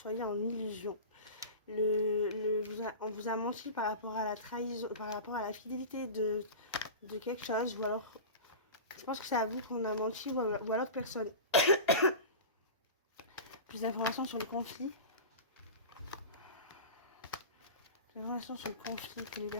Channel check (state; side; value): inverted; both; correlation -0.31